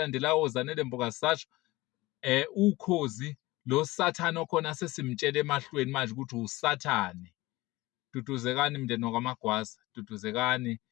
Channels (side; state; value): right; quieter; 20.0 dB